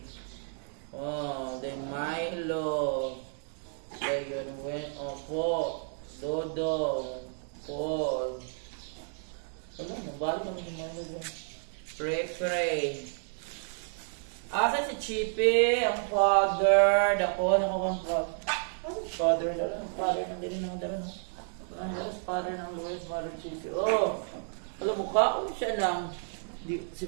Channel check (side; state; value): left; silent; digital silence